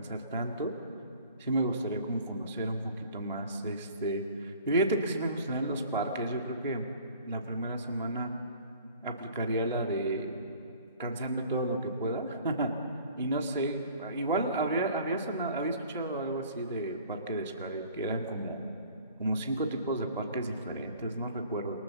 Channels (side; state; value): both; inverted; correlation -0.50